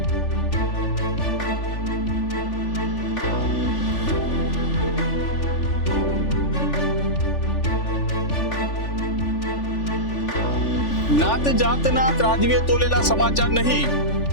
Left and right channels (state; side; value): late; right; 3.4 ms